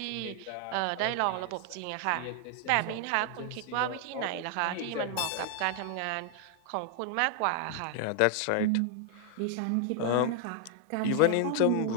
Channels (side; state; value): both; different; correlation 0.00